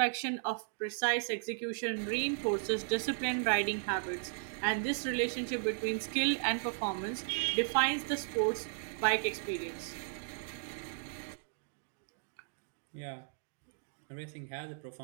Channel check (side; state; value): left; silent; digital silence